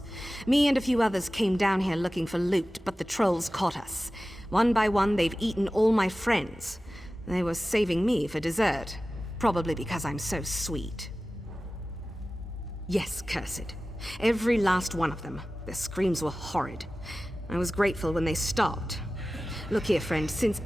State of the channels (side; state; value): both; normal; correlation 0.96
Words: Me and a few others came down here looking for loot, but the trolls caught us. One by one, they've eaten all my friends. They were saving me for dessert. Probably because I'm so sweet. Yes, cursed. Every last one of them. Their screams were horrid. I was grateful when they stopped. Look here, friend, since